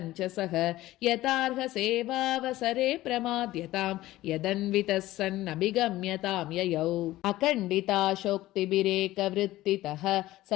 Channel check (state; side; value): quieter; right; 16.3 dB